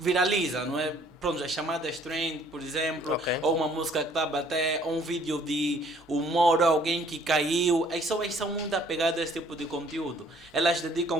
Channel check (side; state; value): both; normal; correlation 0.59